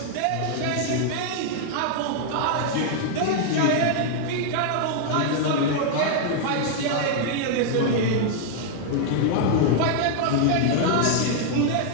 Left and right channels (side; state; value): both; different; correlation 0.00